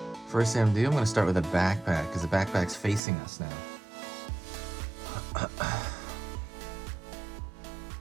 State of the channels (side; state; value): left; drops out; at 3.0 s